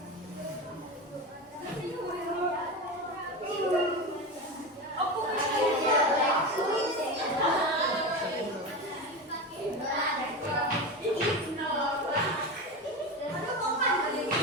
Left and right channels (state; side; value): normal; both; correlation 0.22